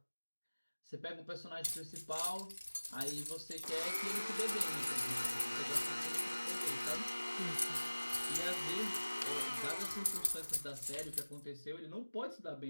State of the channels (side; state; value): both; inverted; correlation -1.00